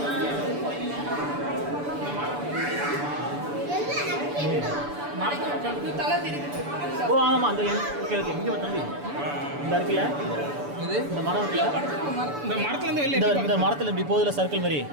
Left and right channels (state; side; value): late; left; 6.9 ms